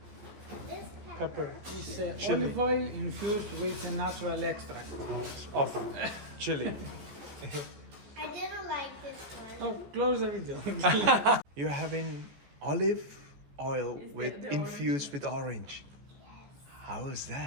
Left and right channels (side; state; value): left; late; 14 ms